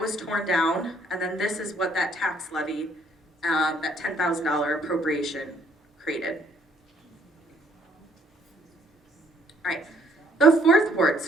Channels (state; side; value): normal; both; correlation 0.65